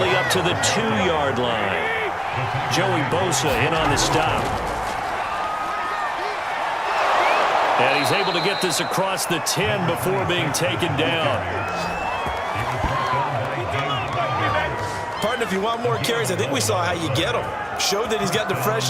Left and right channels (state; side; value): identical; both; correlation 1.00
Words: up to the 2-yard line. Joey Bosa in on the stop. And he's able to get this across the 10 before being taken down. Partner, if you want more carries, I think we saw how you get them. Showed that he's got the